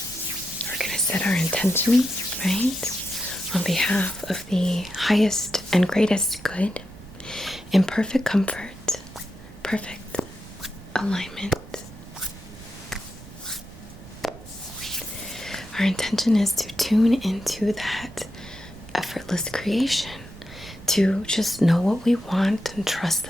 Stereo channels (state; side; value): noise; right; rumble, 18 dB below the sound